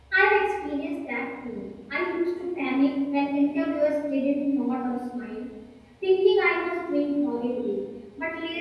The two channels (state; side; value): identical; both; correlation 1.00